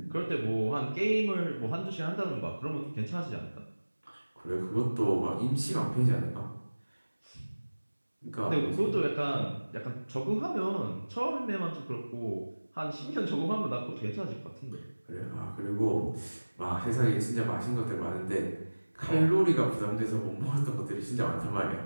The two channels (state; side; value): inverted; both; correlation -1.00